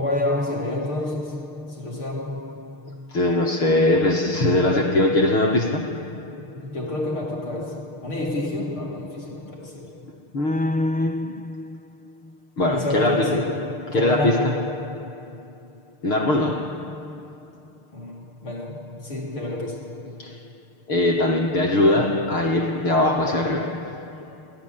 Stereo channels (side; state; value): right; late; 6.6 ms